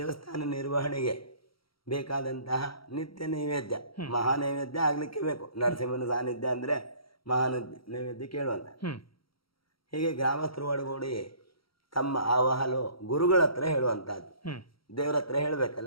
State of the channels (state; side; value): late; right; 0.75 ms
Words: ನಿರ್ವಹಣೆಗೆ ಬೇಕಾದಂತಹ ನಿತ್ಯ ನೈವೇದ್ಯ, ಮಹಾ ನೈವೇದ್ಯ ಆಗಲಿಕ್ಕೆ ಬೇಕು. ನರಸಿಂಹನ ಸಾನ್ನಿಧ್ಯ ಅಂದರೆ ಮಹಾ ನೈವೇದ್ಯ ಕೇಳುವಂತ. ಹೀಗೆ ಗ್ರಾಮಸ್ಥರು ಒಳಗೂಡಿ ತಮ್ಮ ಆವಾಹಲು ಗುರುಗಳ ಹತ್ರ ಹೇಳುವಂತಹದ್ದು. ದೇವ್ರ ಹತ್ರ